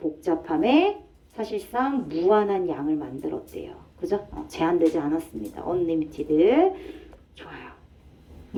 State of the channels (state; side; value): identical; both; correlation 1.00